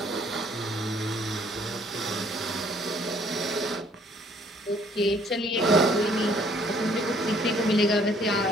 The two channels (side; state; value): both; normal; correlation 0.61